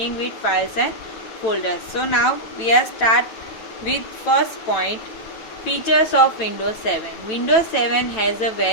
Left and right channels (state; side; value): late; right; 9.1 ms